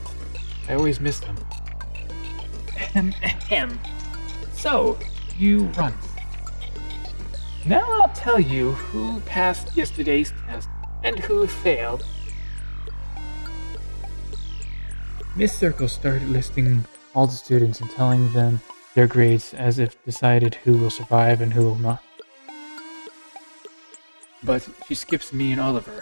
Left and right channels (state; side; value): inverted; both; correlation -1.00